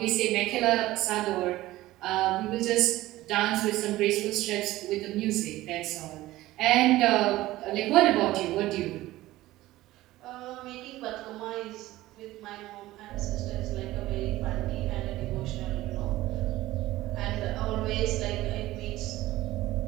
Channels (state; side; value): quieter; left; 16.7 dB